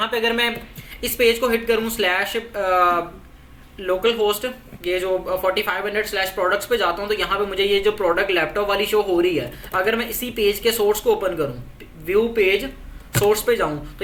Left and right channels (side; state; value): both; identical; correlation 1.00